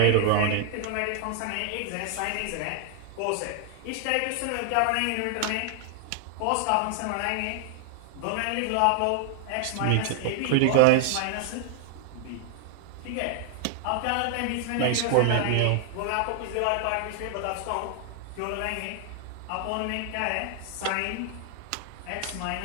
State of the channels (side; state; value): both; different; correlation 0.00